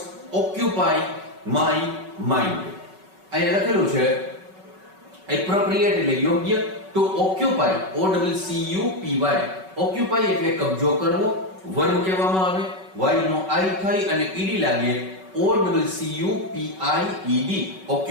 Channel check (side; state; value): left; late; 5.3 ms